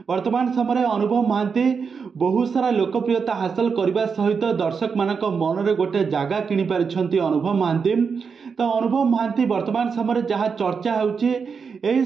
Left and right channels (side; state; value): left; quieter; 5.7 dB